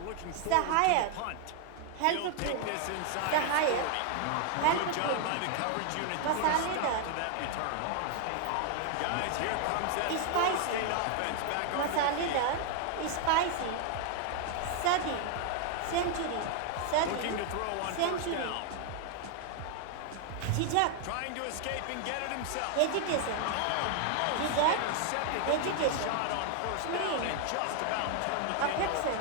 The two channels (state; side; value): different; both; correlation 0.00